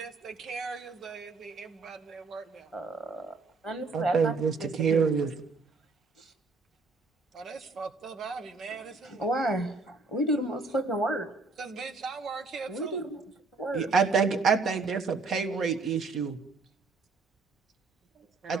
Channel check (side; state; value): left; quieter; 4.0 dB